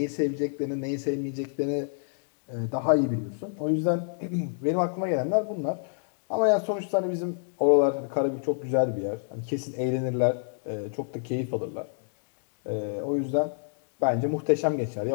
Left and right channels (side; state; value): right; silent; digital silence